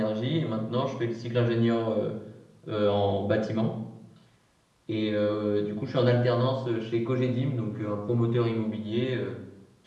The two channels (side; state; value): both; identical; correlation 1.00